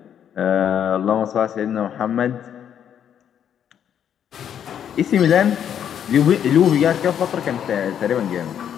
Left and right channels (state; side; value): quieter; right; 9.1 dB